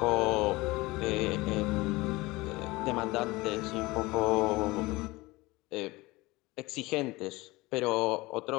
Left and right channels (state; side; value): quieter; right; 21.4 dB